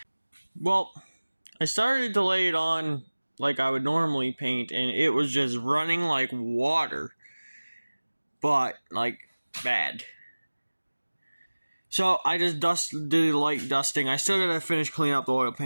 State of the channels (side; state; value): both; inverted; correlation -1.00